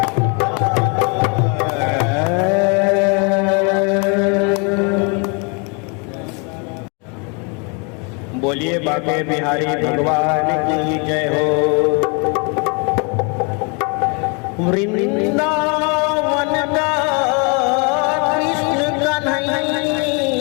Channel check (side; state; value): right; quieter; 34.1 dB